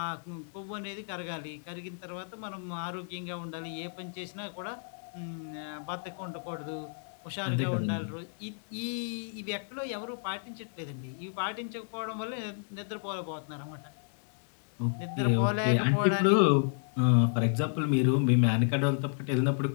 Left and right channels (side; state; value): right; silent; digital silence